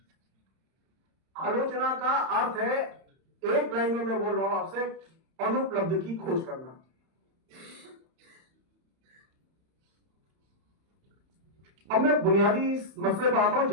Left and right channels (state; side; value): late; left; 31 ms